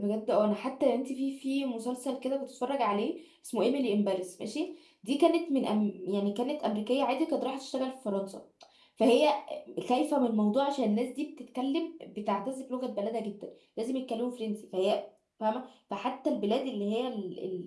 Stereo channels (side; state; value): both; identical; correlation 1.00